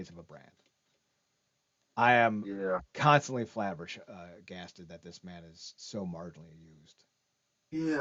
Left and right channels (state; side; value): identical; both; correlation 1.00